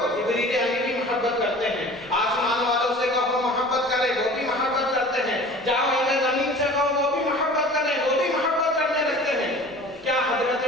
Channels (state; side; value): normal; both; correlation 0.43